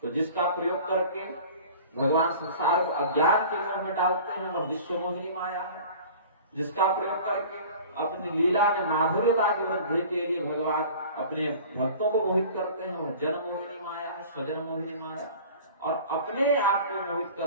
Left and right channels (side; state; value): both; inverted; correlation -0.42